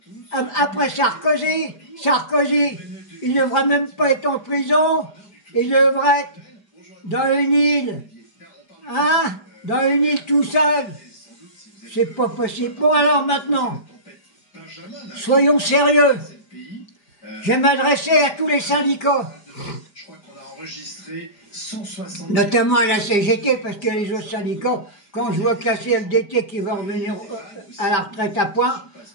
après Sarkozy. Sarkozy, il ne devrait même pas être en prison, il devrait être dans une île, hein, dans une île tout seul. C'est pas possible. Bon alors maintenant, soyons sérieux. Je vais m'adresser à tous les syndicats, notamment à la CGT, parce que les autres syndicats, quand je vois que la CFDT qui va revenir à la retraite à point,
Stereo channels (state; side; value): late; right; 4.9 ms